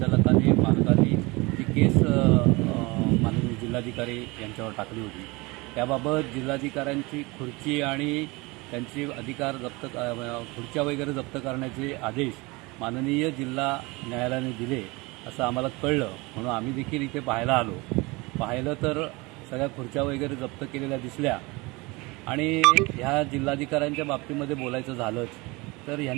मालकाने जी केस माननीय जिल्हाधिकारी यांच्यावर टाकली होती त्याबाबत जिल्हाधिकाऱ्यांची खुर्ची आणि त्यांचे अधिकार जप्त खुर्च्या वगैरे जप्त करण्याचे आदेश माननीय जिल्हा न्यायालयाने दिले असं आम्हाला कळलं, म्हणून आम्ही देखील इथे पाहिलं तर सगळ्या खुर्च्या वगैरे जप्त केलेल्या दिसल्या। आणि ह्या जिल्हाधिकाऱ्यांच्या बाबतीमध्ये बोलायचं झालंच तर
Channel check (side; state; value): left; quieter; 24.6 dB